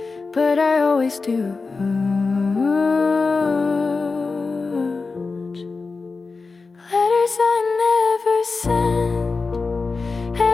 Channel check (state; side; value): quieter; right; 4.2 dB